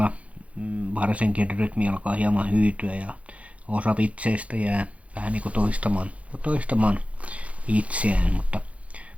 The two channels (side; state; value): left; late; 0.064 ms